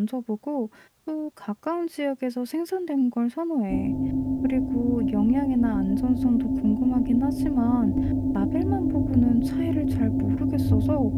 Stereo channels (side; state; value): both; identical; correlation 1.00